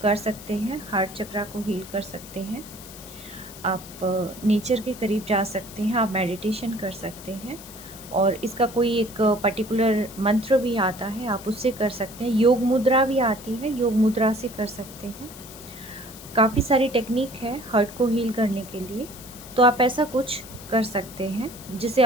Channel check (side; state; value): left; noise; hiss, 16 dB below the sound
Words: कर सकते हैं, हार्ट चक्रा को हील कर सकते हैं, आप नेचर के करीब जा सकते हैं, आप मेडिटेशन कर सकते हैं, और इसका कोई एक पर्टिकुलर मंत्र भी आता है, आप उससे कर सकते हैं। योग मुद्रा भी आती है, योग मुद्रा से कर सकते हैं। काफ़ी सारी टेक्निक है हार्ट को हील करने के लिए, तो आप ऐसा कुछ कर सकते हैं जिससे